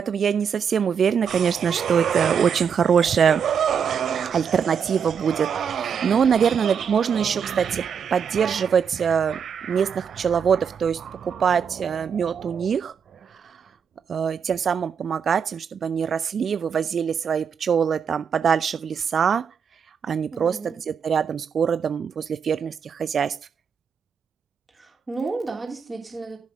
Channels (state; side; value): quieter; left; 7.0 dB